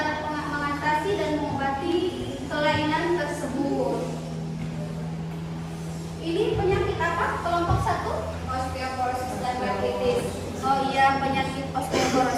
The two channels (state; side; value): identical; both; correlation 1.00